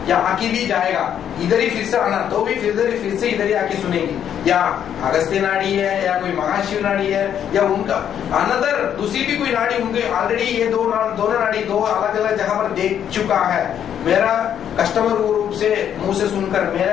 या आके भी जाएगा, इधर ही फिर से आना तो भी फिर से इधर ही आके सुनेंगे। या अगस्त्य नाड़ी है या कोई महाशिव नाड़ी है या उनका अनदर दूसरी भी कोई नाड़ी, उनके ऑलरेडी ये दोनों नाड़ी दो अलग अलग जगह पर देख चुका है। मेरा कस्टमर वो रूप से मुंह से सुनकर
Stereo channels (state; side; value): quieter; right; 9.4 dB